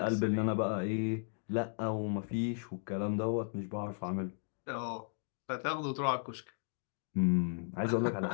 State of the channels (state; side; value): silent; right; digital silence